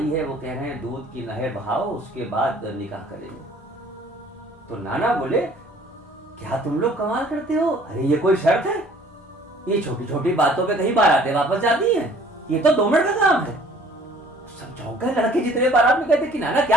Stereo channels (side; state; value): both; normal; correlation 0.54